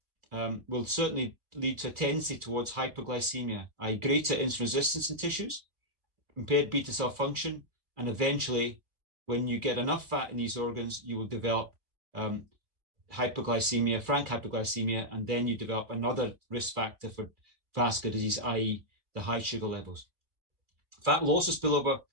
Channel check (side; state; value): left; late; 2.5 ms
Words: will certainly lead to a tendency towards hypoglycemia, i.e. greater insulin resistance in tissues, impaired beta cell function, and eventually, when you get enough fat in these organs, you will develop hypoglycemia, frank hypoglycemia, and then you develop another risk factor for vascular disease, i.e. the high sugar levels. Fat will also spill over